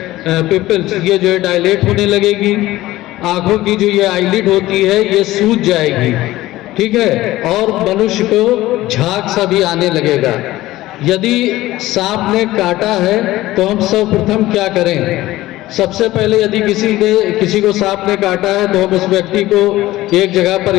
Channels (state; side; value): quieter; right; 16.7 dB